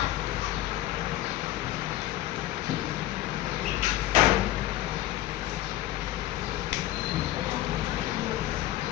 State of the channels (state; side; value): quieter; right; 15.0 dB